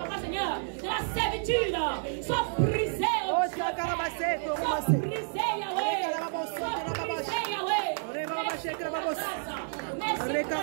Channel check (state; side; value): silent; left; digital silence